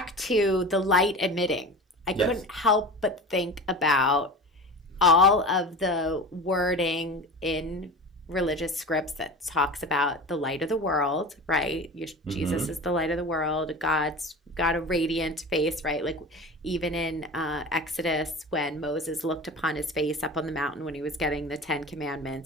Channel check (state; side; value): normal; both; correlation 0.33